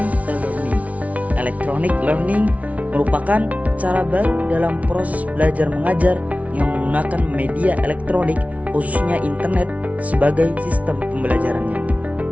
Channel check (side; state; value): left; late; 0.068 ms